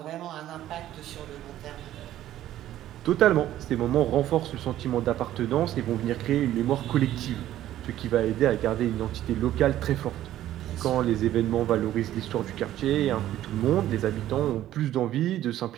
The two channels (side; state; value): left; quieter; 13.0 dB